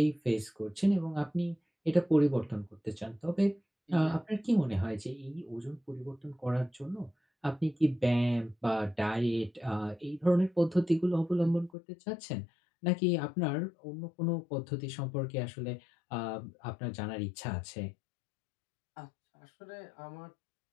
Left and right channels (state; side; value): drops out; right; at 11.7 s